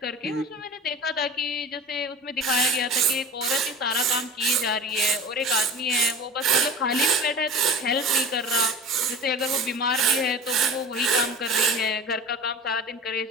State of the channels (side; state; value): both; normal; correlation 0.36